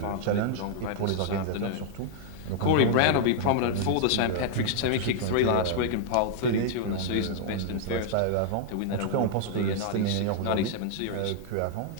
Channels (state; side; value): different; both; correlation -0.01